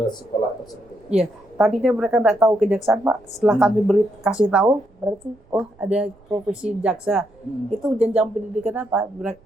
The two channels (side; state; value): right; noise; rumble, 29 dB below the sound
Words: sekolah tersebut. Iya, tadinya mereka nggak tahu kejaksaan Pak. Setelah kami kasih tahu, berarti oh ada profesi jaksa. Itu jenjang pendidikan apa?